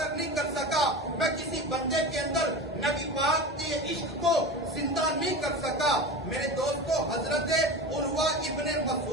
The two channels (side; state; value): both; normal; correlation 0.28